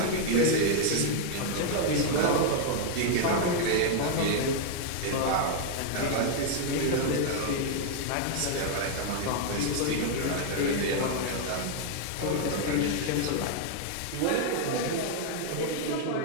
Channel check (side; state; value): both; different; correlation 0.00